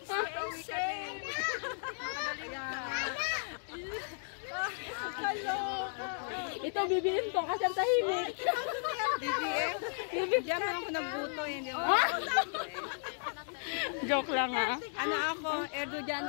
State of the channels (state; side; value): silent; right; digital silence